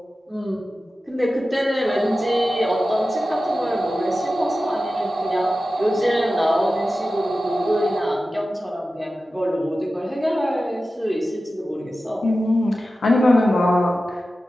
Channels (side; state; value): both; normal; correlation 0.94